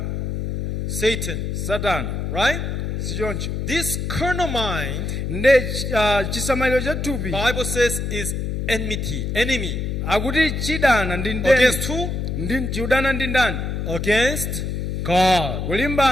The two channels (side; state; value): left; noise; hum, 2 dB below the sound